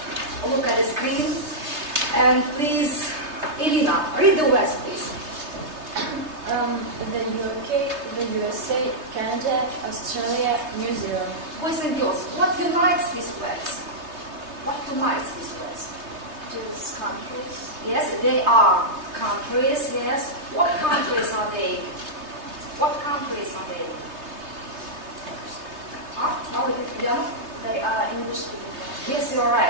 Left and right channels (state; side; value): late; left; 3.3 ms